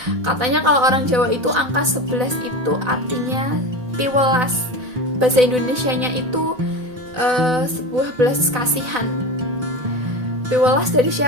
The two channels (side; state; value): left; late; 4.0 ms